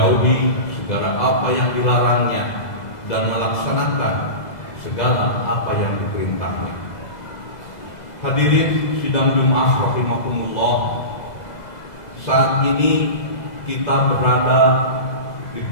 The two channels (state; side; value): late; right; 2.0 ms